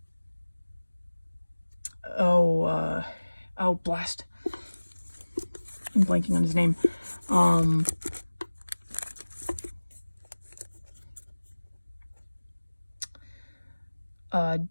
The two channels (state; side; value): inverted; both; correlation -1.00